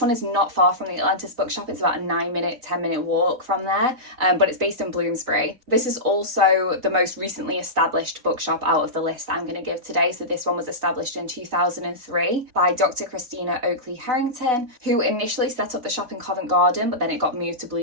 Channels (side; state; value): left; late; 4.0 ms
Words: is not far from the Atlantis Bookshop. It's about a 10-minute walk from there, but it's based in Bloomsbury. This is also the most recently established bookshop out of the list I'm going to give today. So this one was established in 2003 by Dr. Christina Oakley Harrington, who initially set up the shop in Covent Garden, but then it got moved to